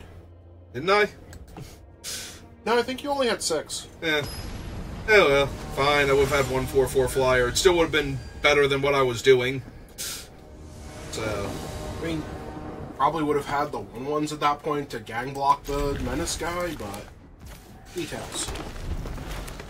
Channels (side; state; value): both; identical; correlation 1.00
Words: Didn't I? No, I think you only had 6. Yeah. Oh well, fine. I would have had 1 4/4 flyer. It still would have been better than what I was doing. So... I mean, probably would have had the 1/1s at that point to gang block the Menace guy, but... details.